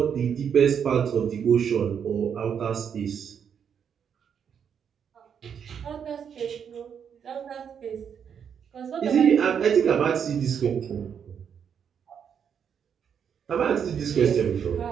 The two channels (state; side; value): quieter; left; 7.7 dB